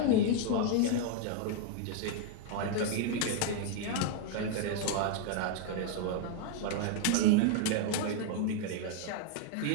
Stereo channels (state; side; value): different; both; correlation 0.00